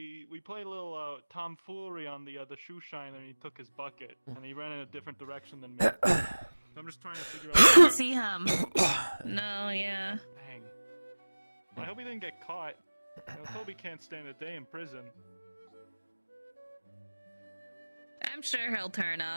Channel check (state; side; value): inverted; both; correlation -1.00